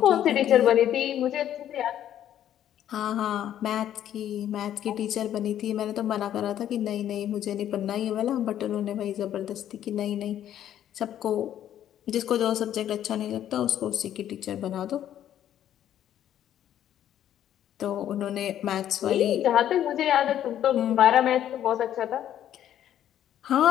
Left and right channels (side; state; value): right; quieter; 11.1 dB